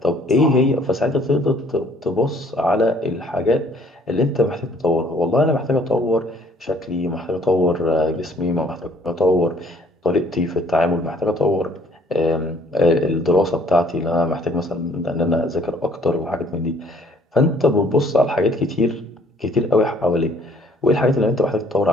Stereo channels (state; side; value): normal; both; correlation 0.60